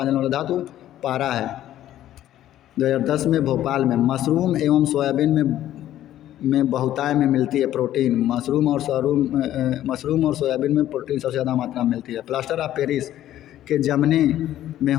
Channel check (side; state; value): right; quieter; 12.7 dB